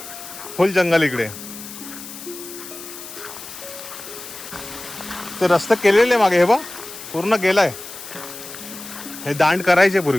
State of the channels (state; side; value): noise; left; hiss, 13 dB below the sound